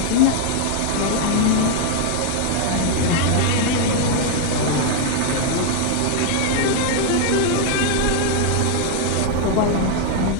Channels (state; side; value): different; both; correlation 0.00